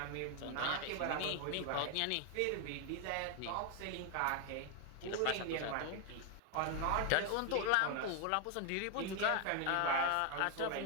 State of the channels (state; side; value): different; both; correlation 0.00